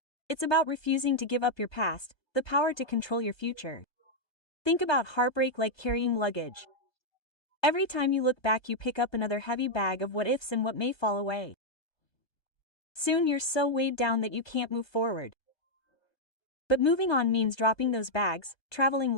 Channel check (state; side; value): late; right; 1.2 ms